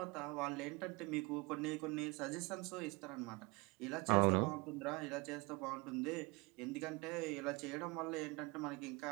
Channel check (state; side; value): quieter; left; 26.3 dB